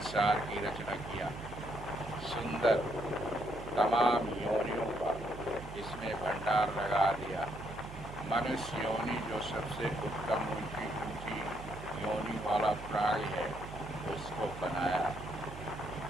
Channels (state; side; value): noise; right; hum, 13 dB below the sound